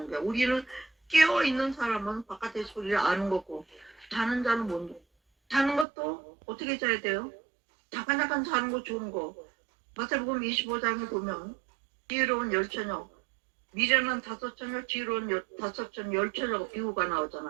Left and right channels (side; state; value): left; drops out; at 5.9 s